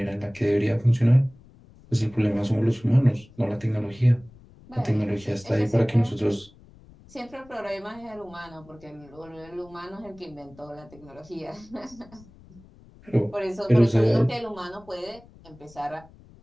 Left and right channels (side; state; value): left; noise; rumble, 24 dB below the sound